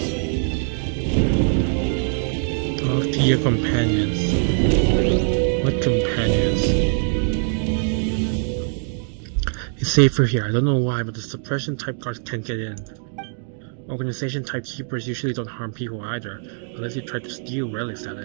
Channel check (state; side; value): silent; left; 62 dB below the other